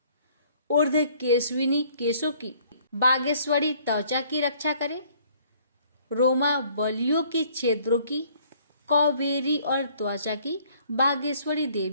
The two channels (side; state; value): both; inverted; correlation -0.60